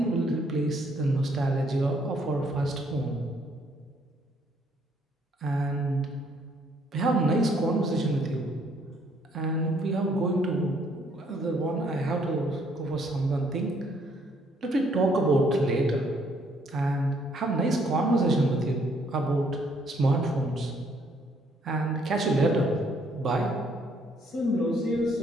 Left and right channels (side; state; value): both; normal; correlation 0.67